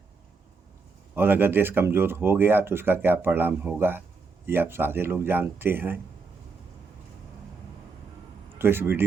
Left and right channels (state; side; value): quieter; left; 4.6 dB